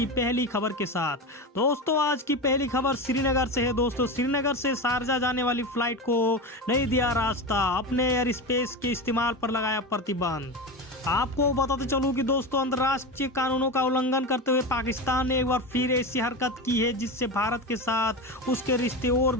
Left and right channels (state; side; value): normal; both; correlation 0.22